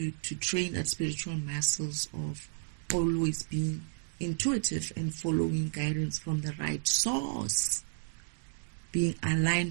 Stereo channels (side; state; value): left; silent; digital silence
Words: train that spiritual muscles of always being intuitive and following guidance from the right source, being